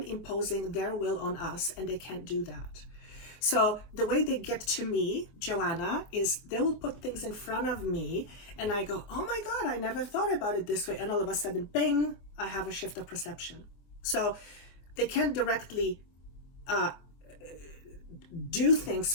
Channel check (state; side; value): late; right; 25 ms